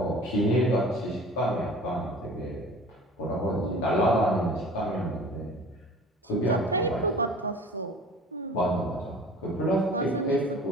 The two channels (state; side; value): normal; both; correlation 0.44